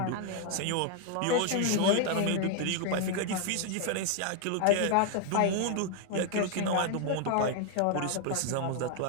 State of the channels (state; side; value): different; both; correlation 0.00